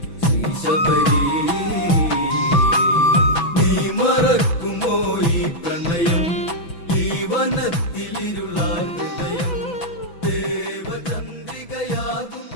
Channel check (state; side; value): late; right; 6.0 ms